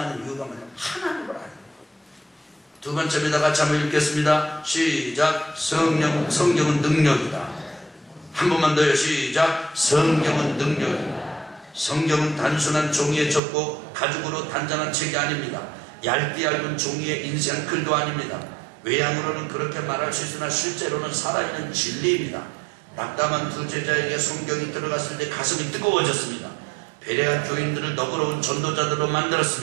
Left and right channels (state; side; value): drops out; left; at 13.4 s